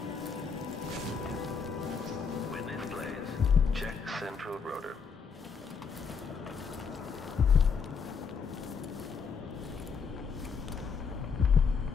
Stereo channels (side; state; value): right; quieter; 5.8 dB